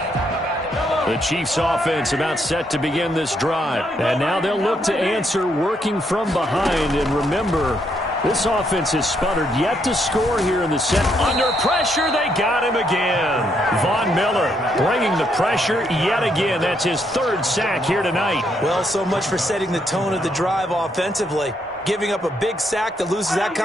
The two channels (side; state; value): both; normal; correlation 0.75